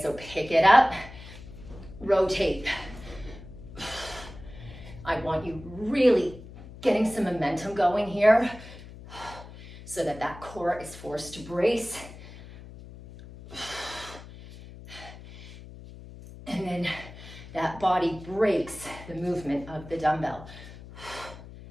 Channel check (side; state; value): left; noise; hum, 16 dB below the sound